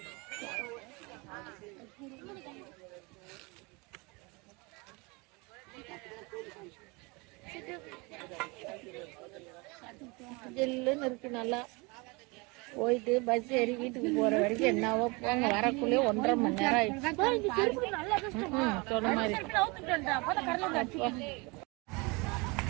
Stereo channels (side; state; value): left; quieter; 27.5 dB